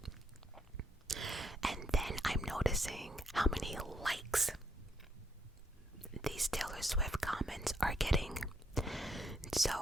And then I'm noticing how many likes these Taylor Swift comments are getting. So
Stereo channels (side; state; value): both; normal; correlation 0.75